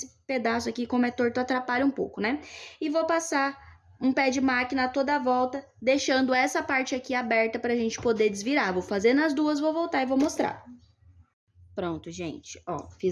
pedaço aqui, como é torto, atrapalha um pouco, né? E vou passar um pé de máquina a toda a volta, deixando essa parte aqui aberta pra gente poder desvirar. Vou fazer nas duas, vou voltar e vou mostrar. Pronto, gente, ó,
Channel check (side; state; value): both; identical; correlation 1.00